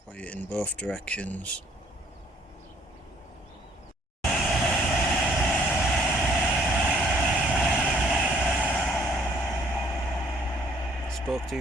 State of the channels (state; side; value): normal; both; correlation 0.62